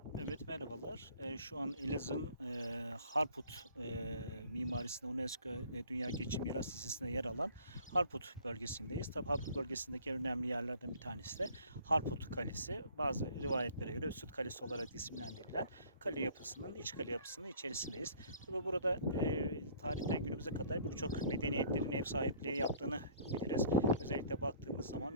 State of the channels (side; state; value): both; inverted; correlation -0.54